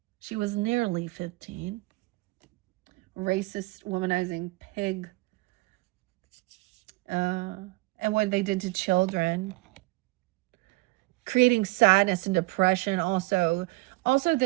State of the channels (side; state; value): left; quieter; 23.2 dB